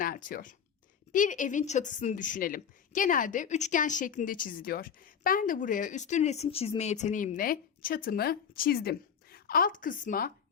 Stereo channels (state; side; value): quieter; right; 7.4 dB